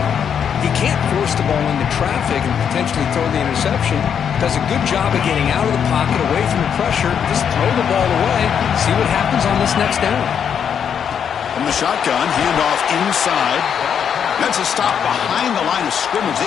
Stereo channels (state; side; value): quieter; right; 7.9 dB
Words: He can't force the ball into traffic and potentially throw the interception. Does a good job of getting out of the pocket, away from the pressure. Just throw the ball away. See what happens on this next down. From the shotgun, handoff inside. That's a stop behind the line of scrimmage.